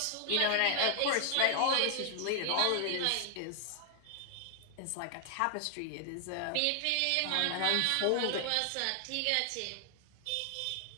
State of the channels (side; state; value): both; different; correlation 0.00